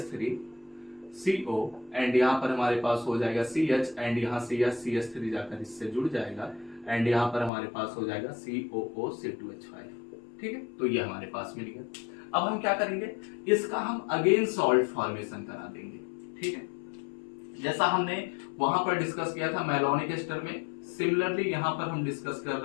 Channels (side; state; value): right; drops out; at 7.5 s